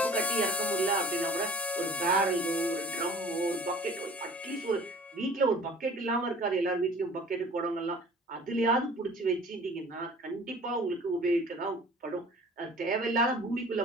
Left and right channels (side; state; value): both; normal; correlation 0.47